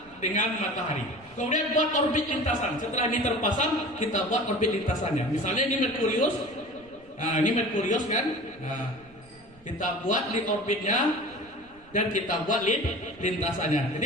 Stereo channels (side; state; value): right; noise; rumble, 27 dB below the sound